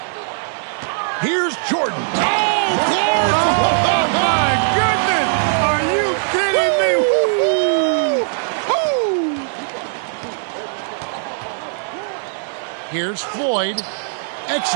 Here's Jordan. Oh, Clark! Oh, my goodness! Are you kidding me? Woo-hoo! Here's Floyd.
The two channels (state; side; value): silent; left; digital silence